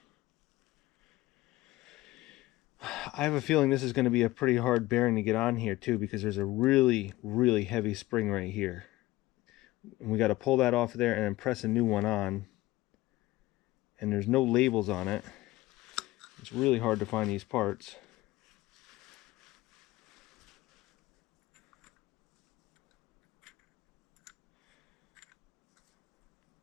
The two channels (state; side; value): quieter; right; 18.2 dB